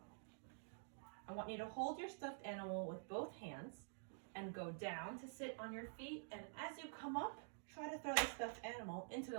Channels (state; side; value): silent; left; digital silence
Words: I want you to hold your stuffed animal with both hands and go down to sit on your feet, and as you come up, try to throw the stuffed animal into